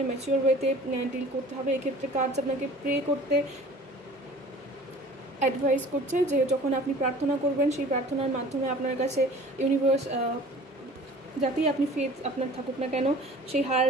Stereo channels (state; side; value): normal; both; correlation 0.45